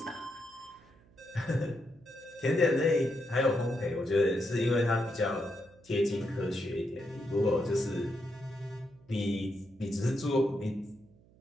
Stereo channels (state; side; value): noise; right; hum, 28 dB below the sound